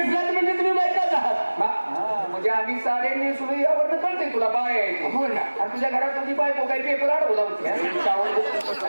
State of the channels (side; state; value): both; inverted; correlation -1.00